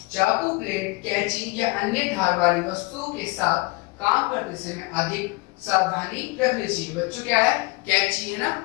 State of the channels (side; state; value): right; quieter; 24.3 dB